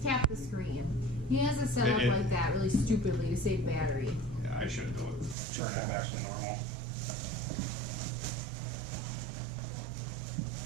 tap the screen. He has it set up like that really stupidly to save battery. Yeah, I should do it. Turn it back to normal.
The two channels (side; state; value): left; drops out; at 5.4 s